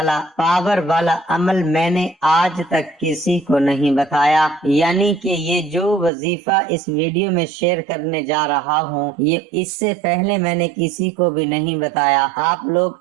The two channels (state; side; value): drops out; left; at 6.1 s